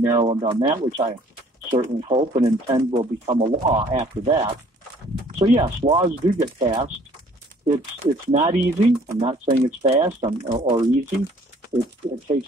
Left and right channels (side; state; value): both; normal; correlation 0.57